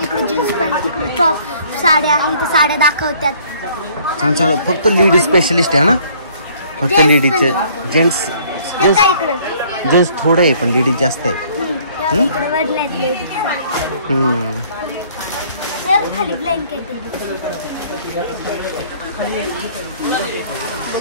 इकडे जीन्स पॅन्ट तिकडे टॉप साड्या आहे तर साड्या दाखवतात छान छान फक्त लेडीज स्पेशलिस्ट आहे ना फक्त लेडीजचे जेंट्स जेंट्स थोडं आहे पण लेडीज जास्त आहे खाली ब्लँकेट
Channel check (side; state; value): both; inverted; correlation -0.59